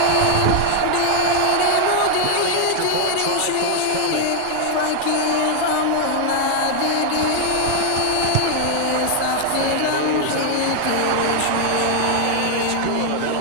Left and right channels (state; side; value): different; both; correlation 0.00